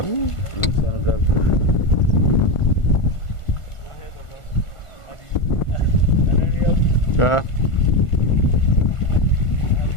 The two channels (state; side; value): late; right; 1.4 ms